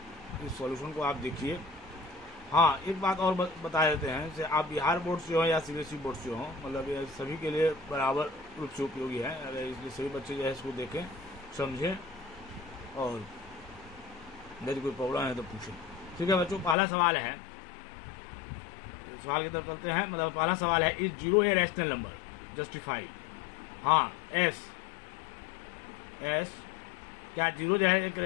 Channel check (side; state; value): right; drops out; at 16.8 s